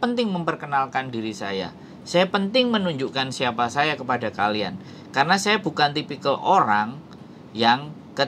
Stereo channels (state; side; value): identical; both; correlation 1.00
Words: memperkenalkan diri saya. Saya penting menunjukkan siapa saya kepada kalian. Karena saya bukan tipikal orang yang